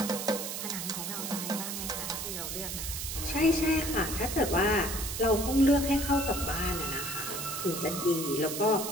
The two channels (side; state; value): right; noise; hiss, 5 dB below the sound